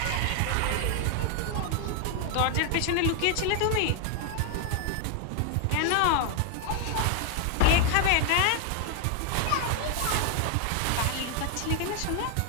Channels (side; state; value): both; different; correlation 0.00